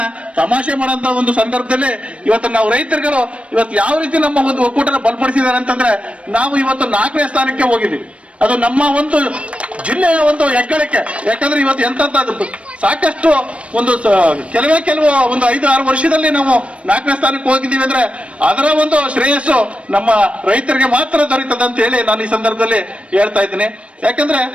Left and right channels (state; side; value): late; left; 0.062 ms